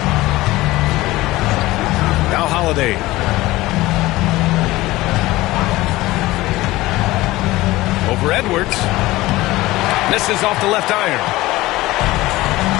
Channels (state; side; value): quieter; right; 18.5 dB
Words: Now Holiday. Over Edwards. Misses off the left iron.